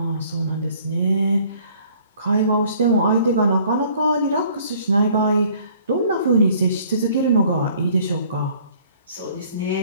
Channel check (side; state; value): both; inverted; correlation -0.57